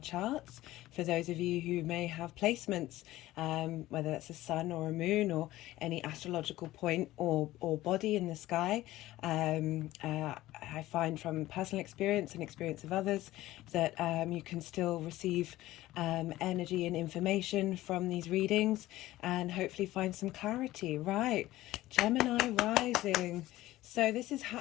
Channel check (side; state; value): right; quieter; 16.3 dB